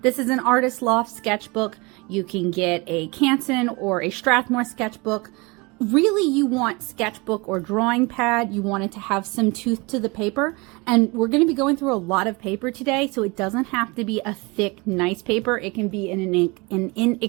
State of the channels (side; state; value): left; quieter; 26.4 dB